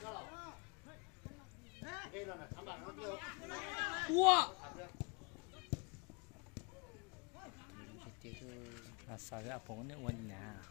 Wow. À sao cái áp phóng nước quanh nhà.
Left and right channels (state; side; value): quieter; right; 31.1 dB